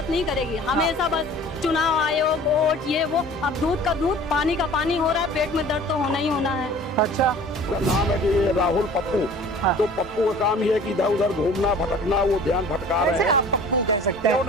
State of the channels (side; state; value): both; normal; correlation 0.46